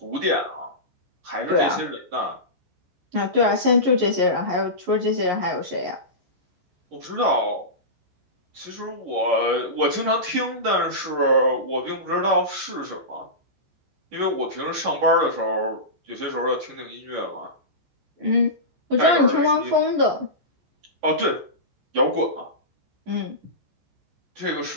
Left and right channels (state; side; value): late; left; 14 ms